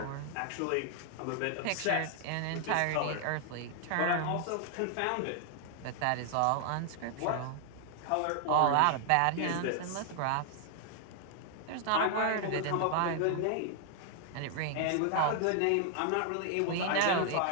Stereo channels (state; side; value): different; both; correlation 0.00